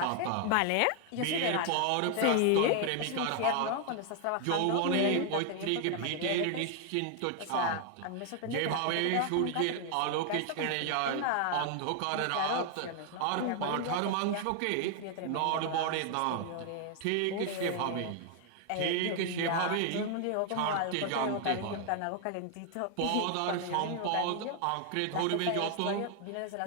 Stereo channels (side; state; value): both; different; correlation 0.00